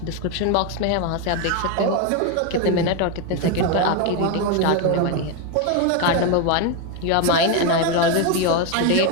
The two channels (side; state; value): both; different; correlation 0.02